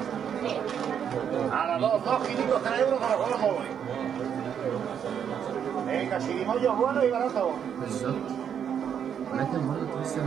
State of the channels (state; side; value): quieter; left; 8.3 dB